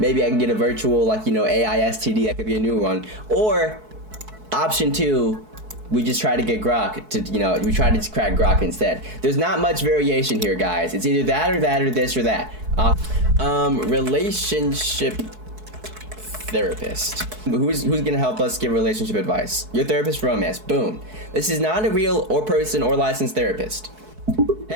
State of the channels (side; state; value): left; late; 4.6 ms